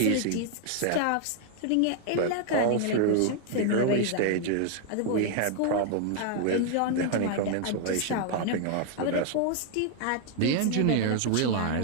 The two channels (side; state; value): both; different; correlation 0.00